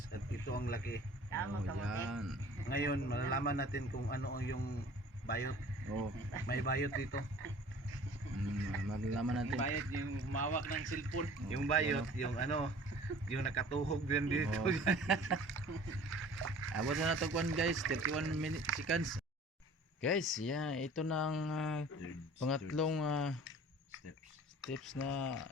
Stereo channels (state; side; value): normal; both; correlation 0.47